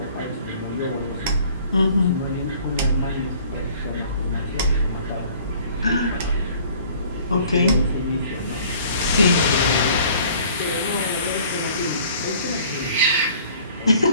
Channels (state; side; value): inverted; both; correlation -0.53